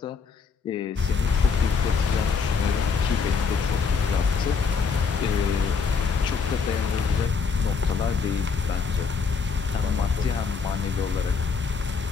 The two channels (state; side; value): quieter; right; 5.4 dB